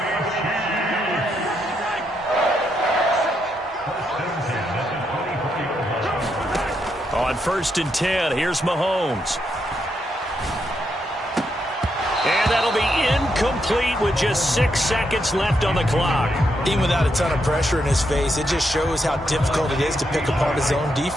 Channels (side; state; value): both; normal; correlation 0.80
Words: On 1st and 10, here's Mahomes. And that'll be incomplete with just 6 seconds left on the clock. Even without a ton of pressure in his face, it just shows how difficult it is to pick apart his own